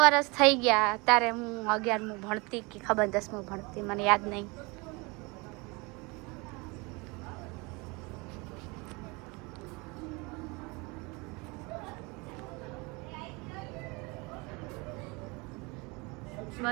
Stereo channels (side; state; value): left; quieter; 26.8 dB